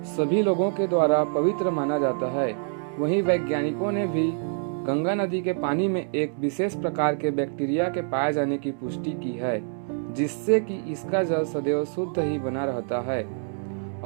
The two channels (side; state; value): left; silent; 61 dB below the other